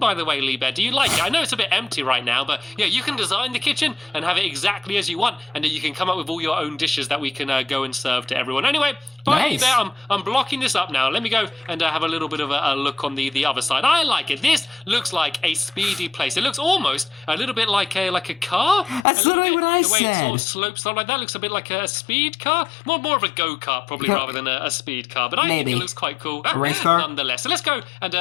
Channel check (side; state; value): right; drops out; at 19.1 s